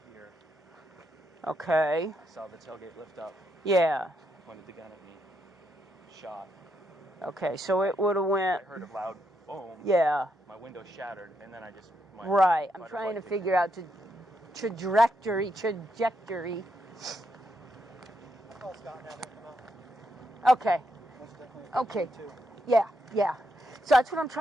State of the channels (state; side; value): normal; both; correlation 0.79